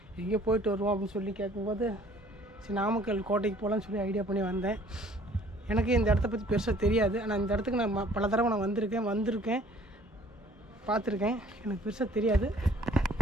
எங்கேயோ போயிட்டு வருவோம் அப்படின்னு சொல்லி கேட்கும்போது சரி நாமக்கல் கோட்டைக்கு போகலான்னு சொல்லி ஐடியா பண்ணி வந்தேன். எனக்கு இந்த இடத்த பற்றி பெருசாக தெரியாது. ஆனால் இந்த இடத்துக்கு நான் பல தடவை நான் வந்திருக்கேன் பார்த்துருக்கேன். எனக்கு பெருசாக தெரியாது.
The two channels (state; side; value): normal; both; correlation 0.55